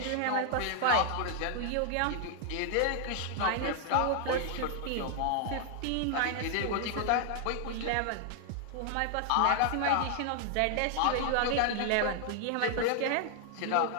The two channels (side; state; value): both; different; correlation 0.00